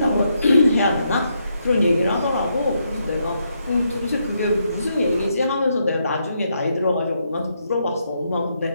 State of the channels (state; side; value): inverted; both; correlation -0.79